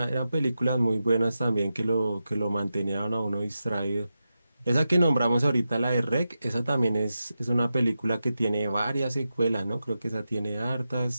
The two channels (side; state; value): both; inverted; correlation -0.90